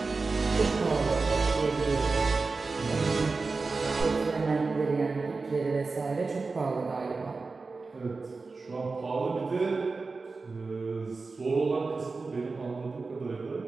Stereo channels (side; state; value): left; quieter; 4.1 dB